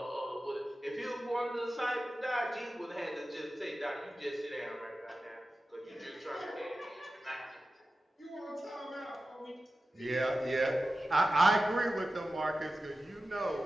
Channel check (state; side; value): normal; both; correlation 0.94